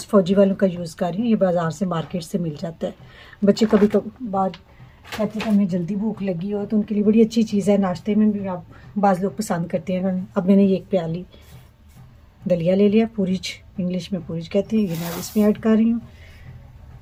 फौजी वालों का यूज़ कर रही हूँ। ये बाज़ार से मार्केट से मिल जाता है। बच्चे कभी कभार कहते हैं हमें जल्दी भूख लगी हो तो उनके लिए बड़ी अच्छी चीज़ है। नाश्ते में भी आप बाज़ लोग पसंद करते हैं। अब मैंने ये 1 प्याली दलिया ले लिया, पूरीज इंग्लिश में पूरीज कहते हैं। ये मैं इसमें ऐड कर रही हूँ।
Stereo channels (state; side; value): identical; both; correlation 1.00